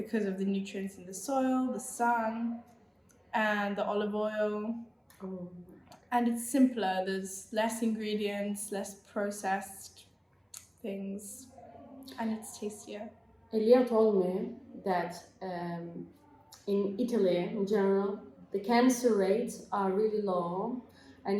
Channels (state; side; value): identical; both; correlation 1.00